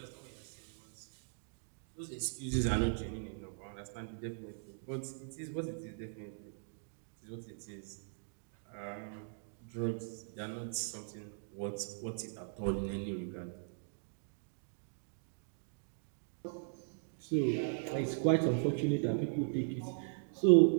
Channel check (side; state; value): left; silent; digital silence